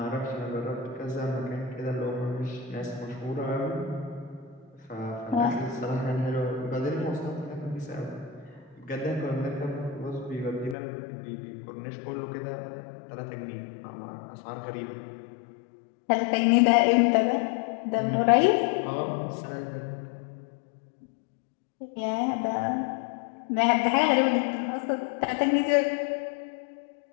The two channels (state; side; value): drops out; right; at 10.8 s